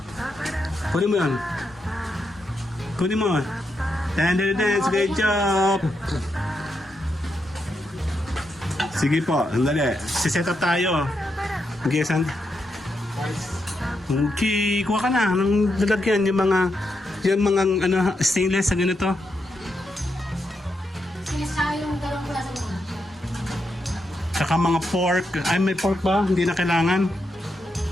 Kunin mo yan. Kunin mo. Den den den, si Kuya Job. Sige po, sandali. Si-set up tayo. Okay, Okay, kuha ka na ng lalagyan yung mga ano stainless sa ganito. Sinasa yung dalawang klase mo. Saka mga pork. Ay, may pork ba? Hindi na kailangan.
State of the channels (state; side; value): normal; both; correlation 0.83